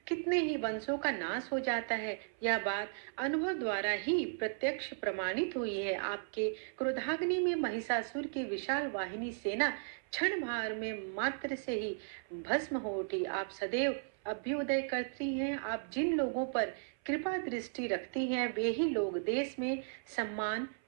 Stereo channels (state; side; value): silent; left; 54 dB below the other